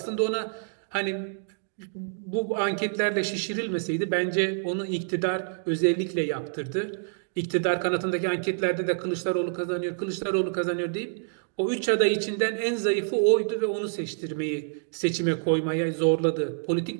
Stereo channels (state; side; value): silent; left; digital silence